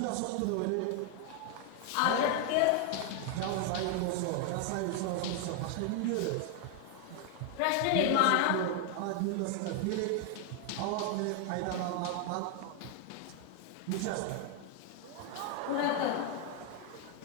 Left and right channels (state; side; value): different; both; correlation 0.01